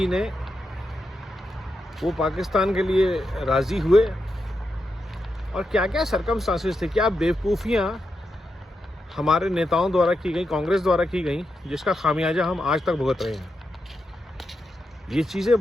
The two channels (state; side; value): normal; both; correlation 0.86